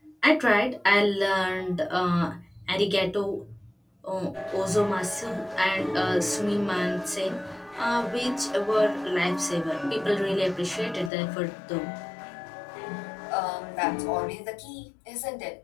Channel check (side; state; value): right; drops out; at 11.1 s